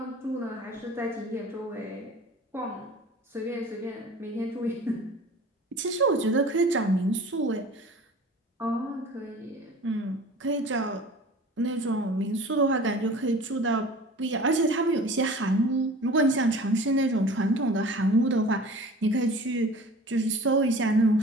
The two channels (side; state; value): both; normal; correlation 0.43